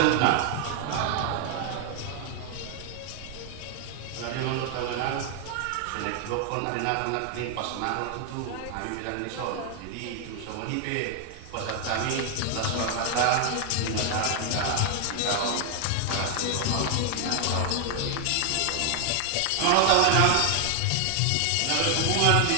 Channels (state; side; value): different; both; correlation 0.00